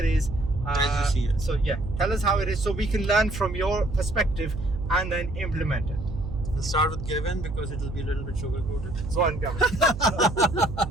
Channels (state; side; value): noise; right; hum, 8 dB below the sound